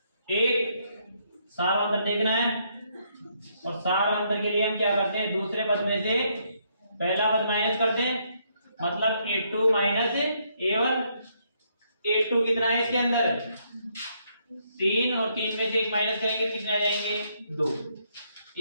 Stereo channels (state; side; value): inverted; both; correlation -0.73